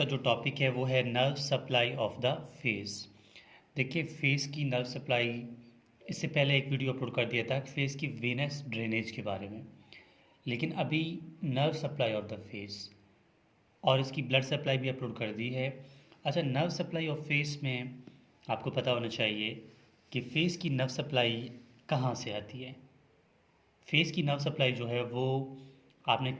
जो टॉपिक है वो है nerve supply of the face. देखिए, फेस की नर्व सप्लाई, इससे पहले एक वीडियो अपलोड कर दिया था फेस की वेनस ड्रेनेज के बारे में। लेकिन अभी nerve supply of the face और इसकी ब्लड सप्लाई भी अपलोड कर दी है। अच्छा, नर्व सप्लाई ऑफ फेस में आपको पता होना चाहिए कि फेस की नर्व सप्लाई कहाँ से आती है। फेस की नर्व सप्लाई जो है वो, आपने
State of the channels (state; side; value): identical; both; correlation 1.00